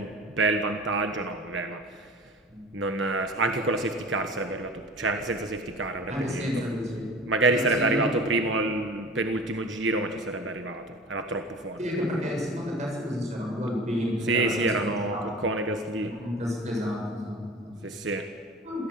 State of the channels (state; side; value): normal; both; correlation 0.38